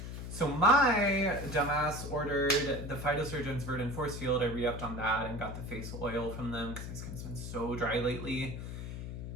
So my dumbass ordered the Phytosurgeon's Verdant Force Field. I re-upped on that and got the face oil from them because my skin's been so dry lately.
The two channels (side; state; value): left; noise; hum, 7 dB below the sound